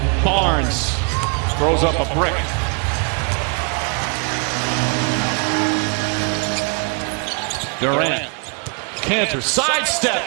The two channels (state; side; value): quieter; left; 34.5 dB